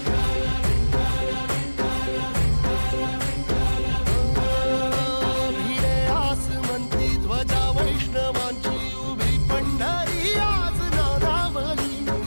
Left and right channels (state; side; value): inverted; both; correlation -1.00